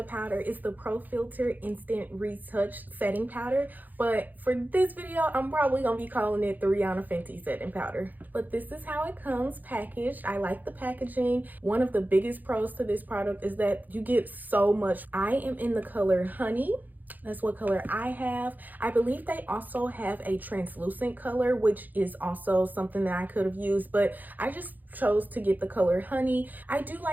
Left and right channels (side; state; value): left; late; 0.084 ms